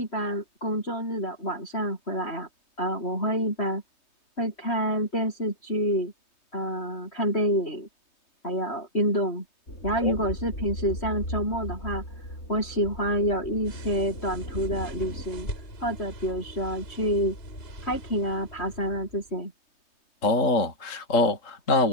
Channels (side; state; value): right; late; 3.2 ms